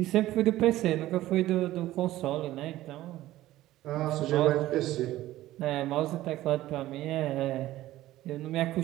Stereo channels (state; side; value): quieter; left; 15.4 dB